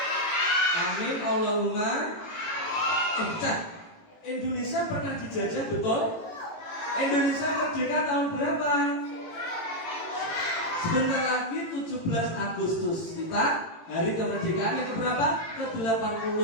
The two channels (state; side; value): late; right; 18 ms